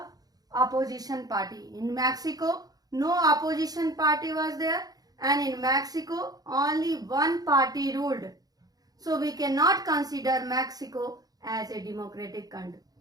opposition party. In Mexico, no opposition party was there, and in Mexico, only one party ruled. So we cannot consider Mexico as a democratic country.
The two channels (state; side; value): late; left; 0.18 ms